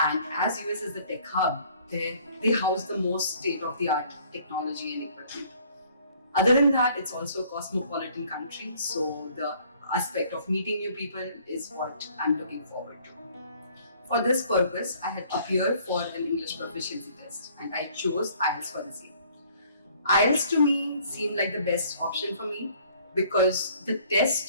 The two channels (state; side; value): inverted; both; correlation -0.58